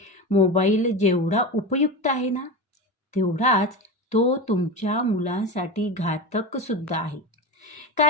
मोबाईल जेवढा उपयुक्त आहे ना, तेवढाच तो तुमच्या मुलांसाठी घातक सुद्धा आहे.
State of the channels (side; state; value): both; normal; correlation 0.23